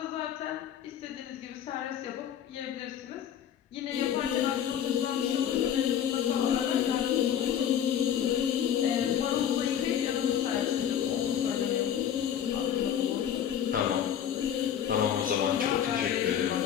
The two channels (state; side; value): quieter; right; 9.5 dB